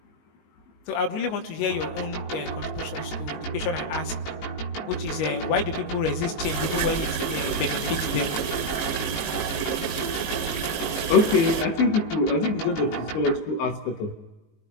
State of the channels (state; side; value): late; right; 19 ms